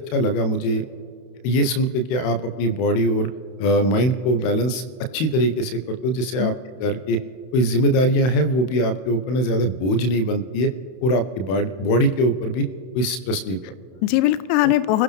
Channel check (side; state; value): right; late; 32 ms